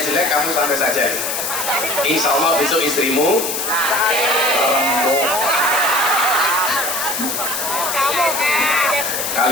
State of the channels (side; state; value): left; noise; hiss, 2 dB below the sound